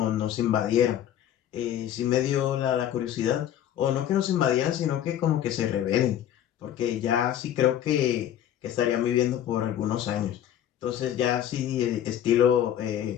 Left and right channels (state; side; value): quieter; right; 10.9 dB